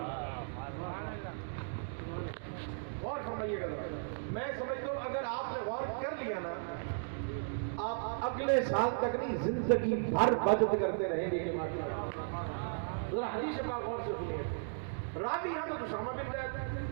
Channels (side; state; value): left; silent; digital silence